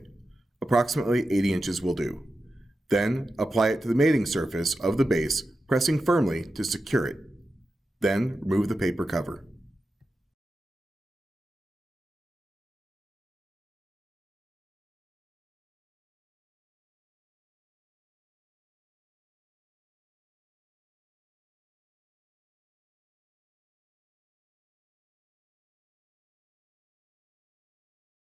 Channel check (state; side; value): normal; both; correlation 0.91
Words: Approximately 80 inches will do. Then, apply it to the mating surface of the base, pressing firmly to secure it. Then, remove the paper cover.